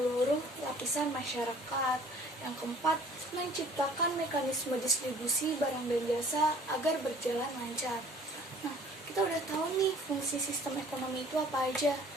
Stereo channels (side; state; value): both; normal; correlation 0.52